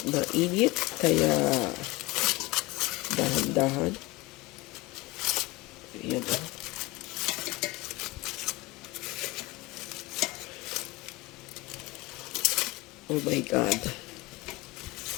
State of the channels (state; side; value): quieter; right; 21.6 dB